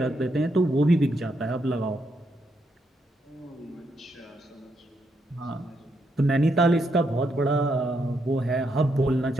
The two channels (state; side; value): normal; both; correlation 0.79